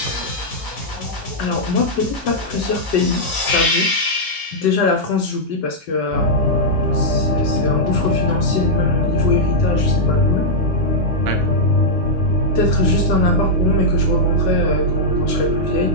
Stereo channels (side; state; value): both; normal; correlation -0.06